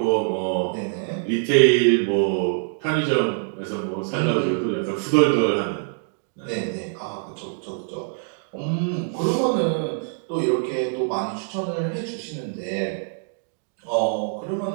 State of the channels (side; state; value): left; silent; digital silence